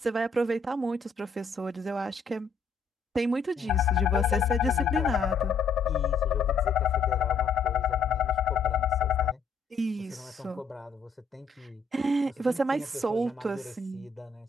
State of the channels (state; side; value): quieter; right; 4.5 dB